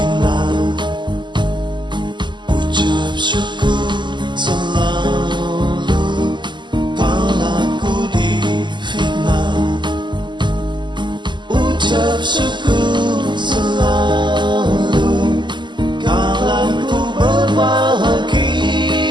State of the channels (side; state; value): left; late; 0.22 ms